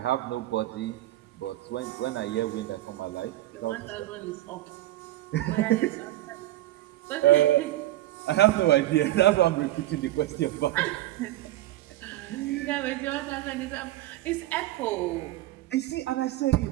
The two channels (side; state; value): left; quieter; 15.3 dB